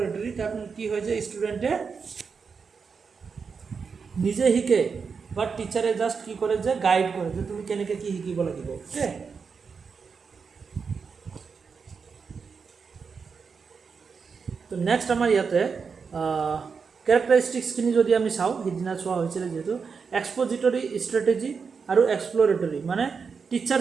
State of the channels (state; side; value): quieter; left; 5.6 dB